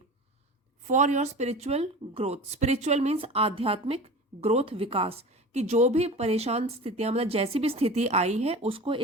For your spiritual growth, spiritual means आध्यात्मिक ग्रोथ, विकास, कि जो भी परेशान स्थितियां, मतलब जैसी भी स्थिति आई है, उसको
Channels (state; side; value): normal; both; correlation 0.34